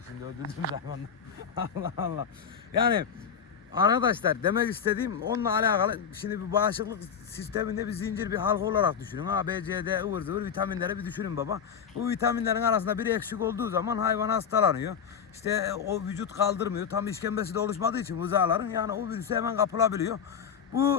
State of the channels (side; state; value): right; quieter; 7.3 dB